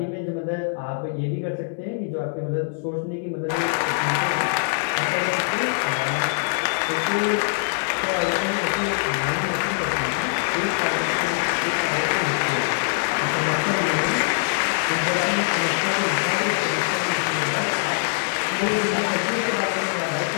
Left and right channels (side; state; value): right; silent; digital silence